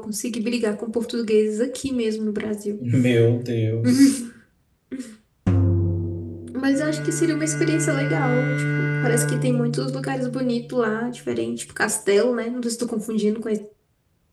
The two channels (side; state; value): both; identical; correlation 1.00